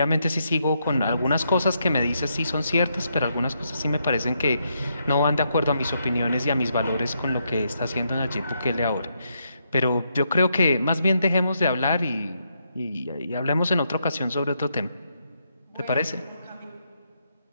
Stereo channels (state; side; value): inverted; both; correlation -0.79